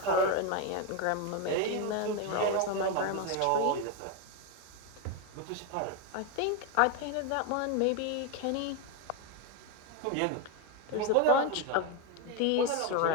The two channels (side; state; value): both; different; correlation 0.02